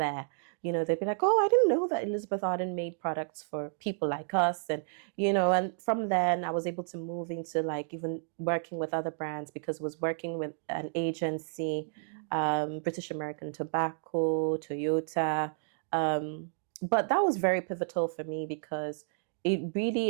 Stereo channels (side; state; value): left; silent; digital silence